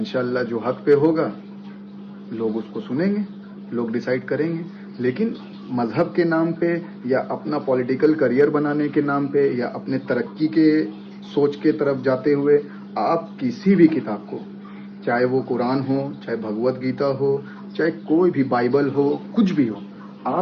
जो हक पे होगा लोग उसको सुनेंगे, लोग डिसाइड करेंगे। लेकिन मजहब के नाम पे या अपना पॉलिटिकल करियर बनाने के नाम पे या अपने तरक्की के सोच के तरफ जाते हुए आप किसी भी किताब को, चाहे वो कुरान हो, चाहे भगवत गीता हो, चाहे कोई भी बाइबल हो, कुछ भी हो,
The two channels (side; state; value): both; identical; correlation 1.00